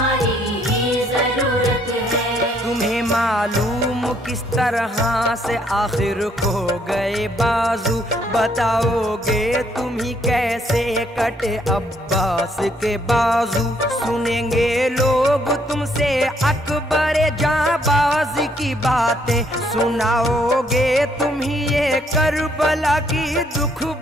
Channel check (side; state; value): both; normal; correlation 0.68